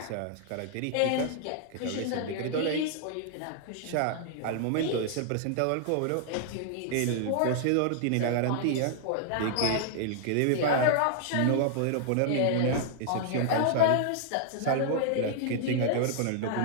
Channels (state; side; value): different; both; correlation -0.01